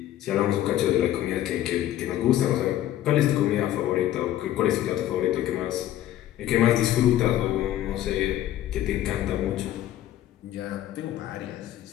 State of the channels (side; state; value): right; quieter; 12.9 dB